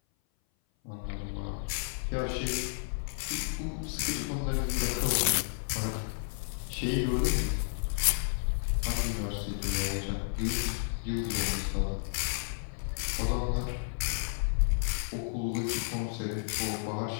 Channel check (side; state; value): right; silent; 56 dB below the other